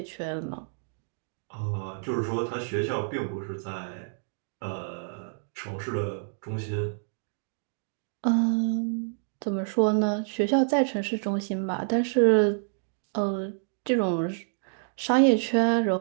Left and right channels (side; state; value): left; silent; digital silence